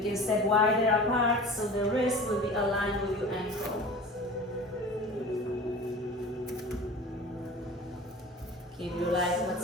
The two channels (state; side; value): normal; both; correlation 0.38